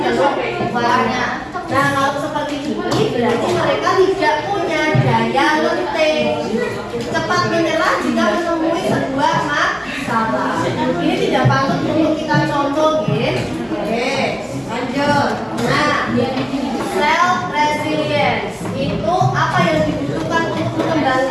Nah, kalau seperti ini berarti mereka tidak punya daya lenting, cepat menyerah jika menemui sebuah masalah. Ini tidak patut untuk kita contoh, ya. Oke, lanjut. Nah, self resilience itu apa yang dibutuhkan untuk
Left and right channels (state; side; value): identical; both; correlation 1.00